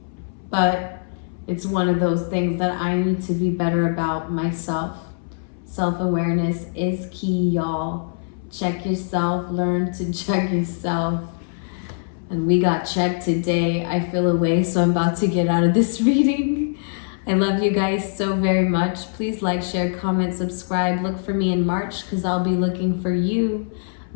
But it's one of those things that I need to be better about myself. Self-awareness is key, y'all. Check yourself, learn to check yourself. And we got checked today. I feel away, so I'm about to get out of this reading. I love you guys so very much. Please like, share, comment, subscribe. Look for me in March, because I'll be looking for you.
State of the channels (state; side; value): silent; right; 64 dB below the other